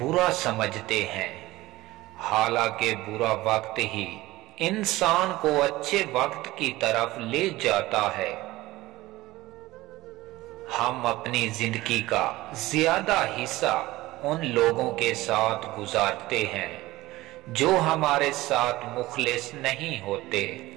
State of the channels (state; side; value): quieter; left; 18.2 dB